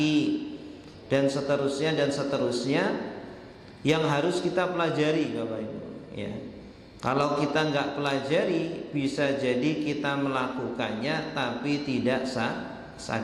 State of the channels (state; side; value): identical; both; correlation 1.00